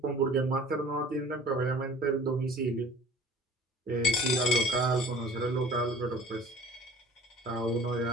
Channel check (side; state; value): both; normal; correlation 0.47